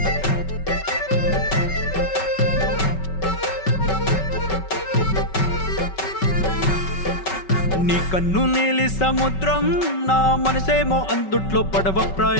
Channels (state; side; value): late; right; 5.3 ms